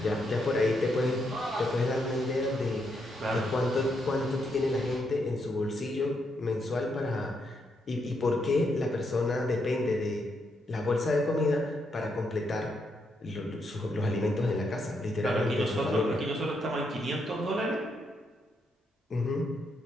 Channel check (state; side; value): normal; both; correlation 0.79